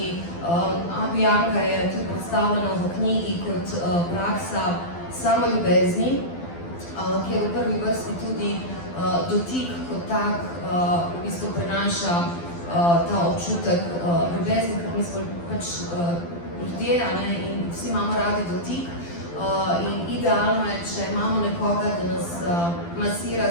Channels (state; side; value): late; right; 12 ms